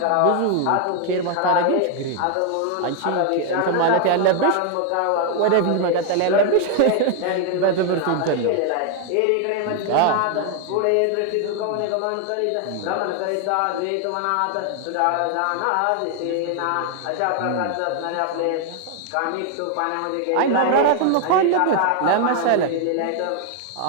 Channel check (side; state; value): both; different; correlation 0.00